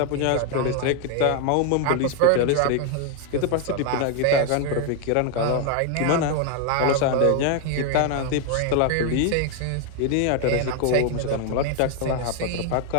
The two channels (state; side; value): different; both; correlation 0.00